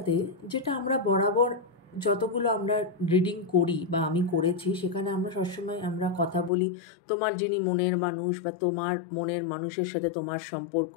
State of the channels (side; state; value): right; drops out; at 6.5 s